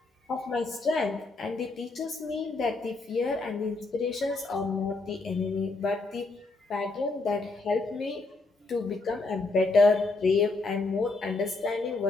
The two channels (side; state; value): right; quieter; 3.4 dB